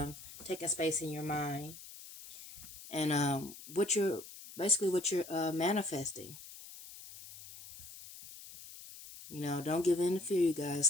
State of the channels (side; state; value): left; noise; hiss, 15 dB below the sound